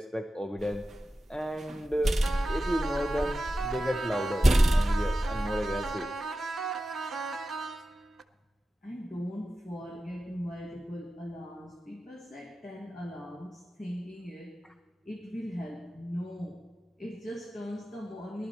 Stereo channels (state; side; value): normal; both; correlation 0.93